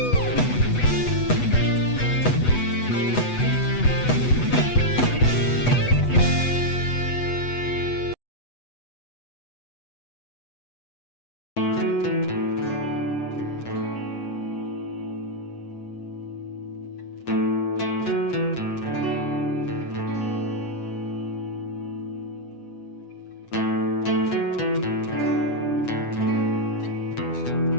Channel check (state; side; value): late; right; 8.1 ms